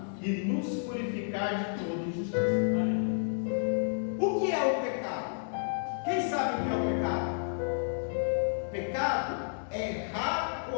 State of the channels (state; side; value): silent; right; digital silence